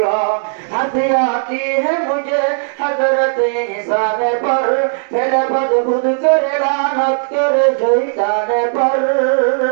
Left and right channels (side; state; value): left; silent; digital silence